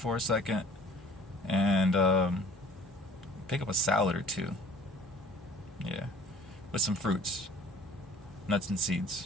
a second, and pick up a salad or two. Yeah, with some fruits, nuts and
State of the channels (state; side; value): normal; both; correlation 0.50